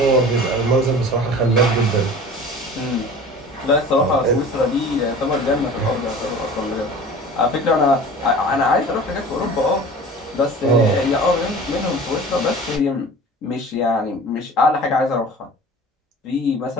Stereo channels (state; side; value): normal; both; correlation 0.40